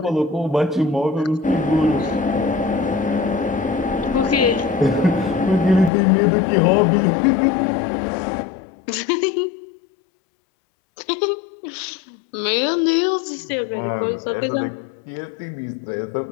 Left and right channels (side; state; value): right; drops out; at 5.9 s